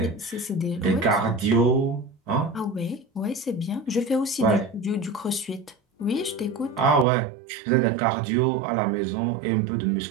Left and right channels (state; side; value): drops out; left; at 7.1 s